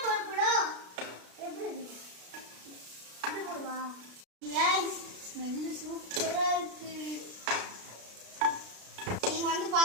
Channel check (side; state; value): left; late; 33 ms